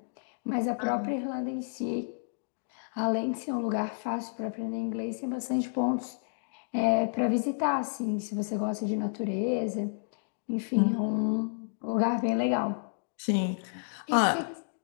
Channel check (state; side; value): silent; right; digital silence